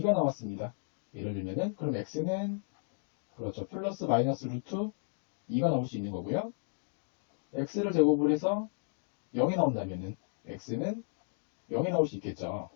나왔습니다. 예를 들면은 그럼 x는 그렇죠. 플러스 마이너스 루트 2가 나올 수 있는 거고요. x를 제곱을 해서 0이 나온다면은 x는 0이 나올 수 있겠죠.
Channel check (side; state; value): right; silent; digital silence